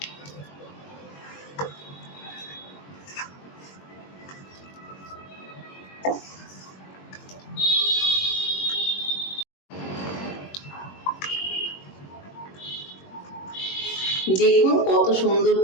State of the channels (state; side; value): late; right; 21 ms